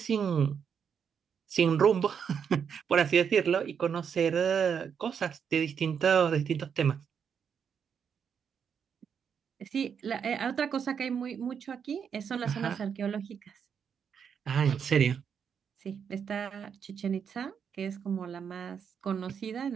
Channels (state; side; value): quieter; left; 7.2 dB